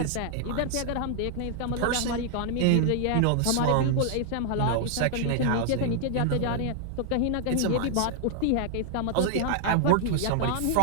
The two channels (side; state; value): both; different; correlation 0.00